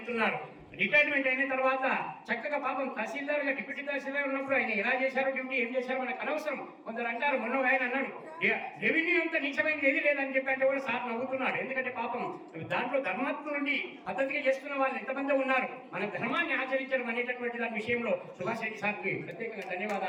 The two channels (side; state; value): both; identical; correlation 1.00